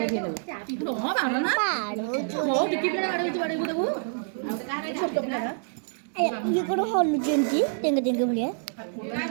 ये कौन हॉल जेंटी टेंगे टेंगे भलिया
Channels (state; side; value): silent; left; digital silence